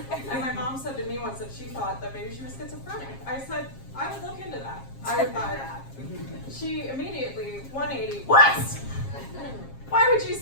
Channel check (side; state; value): right; late; 7.4 ms